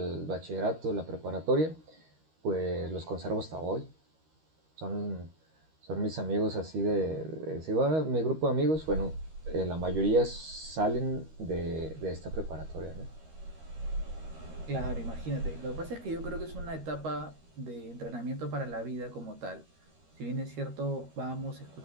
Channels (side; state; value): left; late; 13 ms